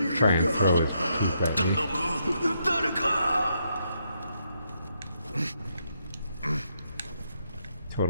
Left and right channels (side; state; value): both; inverted; correlation -0.77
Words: try and throw his poop at me.